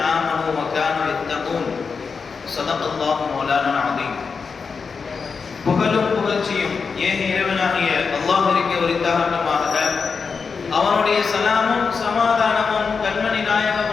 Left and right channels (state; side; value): quieter; right; 5.3 dB